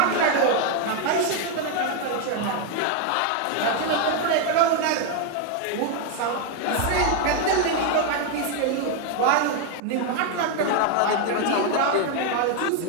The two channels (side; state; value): both; different; correlation 0.01